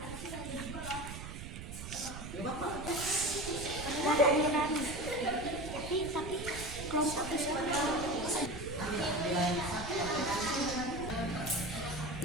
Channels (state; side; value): noise; right; rumble, 9 dB below the sound